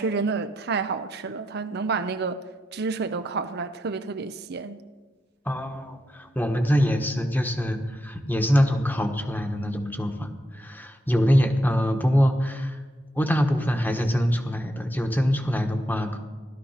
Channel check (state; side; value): normal; both; correlation 0.83